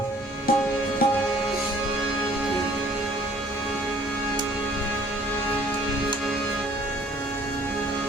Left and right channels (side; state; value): both; normal; correlation 0.56